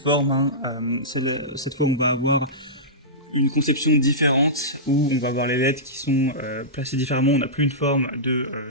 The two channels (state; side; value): normal; both; correlation -0.17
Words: hein. Cette fois, on va avoir une conception différente où on va avoir les LED qui sont placés différemment. On n'a plus une forme de